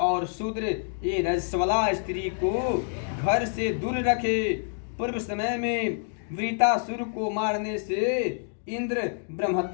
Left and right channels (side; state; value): right; silent; digital silence